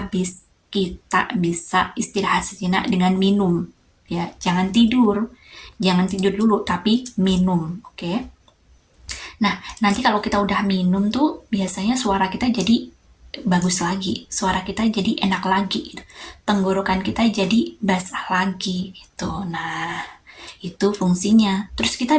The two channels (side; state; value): both; identical; correlation 1.00